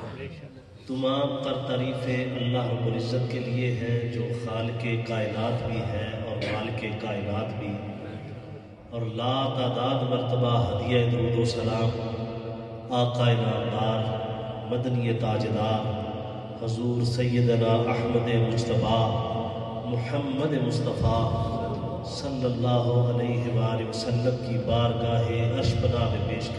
تمام تر تعریفیں اللہ رب العزت کے لیے ہیں جو خالق کائنات بھی ہے اور مالک کائنات بھی، اور لا تعداد مرتبہ ہدیہ درود و سلام آقا نامدار مدنی تاجدار حضور سیدنا احمد مجتبیٰ محمد مصطفیٰ صلی اللہ علیہ وآلہ وسلم کی بارگاہ عرش پناہ میں پیش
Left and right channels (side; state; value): both; identical; correlation 1.00